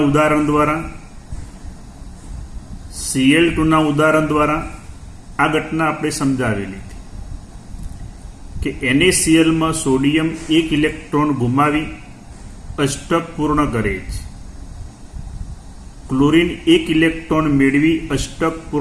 ઉદાહરણ દ્વારા, Cl2ના ઉદાહરણ દ્વારા આ ઘટના આપણે સમજાવેલી હતી કે NaClમાં સોડિયમ એક ઇલેક્ટ્રોન ગુમાવી અષ્ટક પૂર્ણ કરે છે. ક્લોરીન એક ઇલેક્ટ્રોન મેળવી અષ્ટક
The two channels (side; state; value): both; identical; correlation 1.00